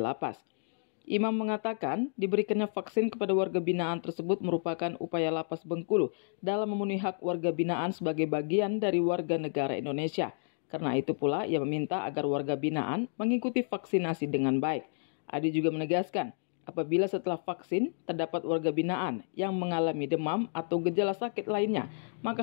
Imam mengatakan diberikannya vaksin kepada warga binaan tersebut merupakan upaya Lapas Bengkulu dalam memenuhi hak warga binaan sebagai bagian dari warga negara Indonesia. Karena itu pula ia meminta agar warga binaan mengikuti vaksinasi dengan baik. Adi juga menegaskan, apabila setelah vaksin terdapat warga binaan yang mengalami demam atau gejala sakit lainnya,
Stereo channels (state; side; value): silent; right; digital silence